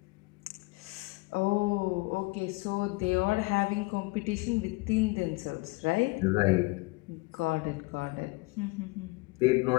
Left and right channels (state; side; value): quieter; right; 25.0 dB